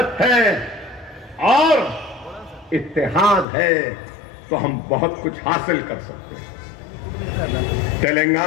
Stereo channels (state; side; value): drops out; right; at 3.5 s